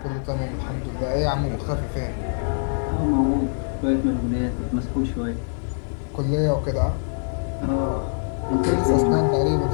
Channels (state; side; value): silent; right; digital silence